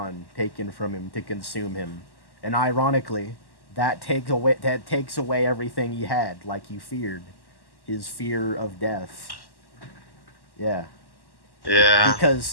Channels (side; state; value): right; late; 1.1 ms